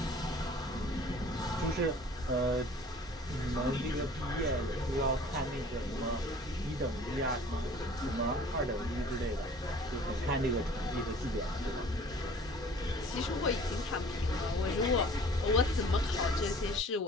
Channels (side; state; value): both; normal; correlation 0.49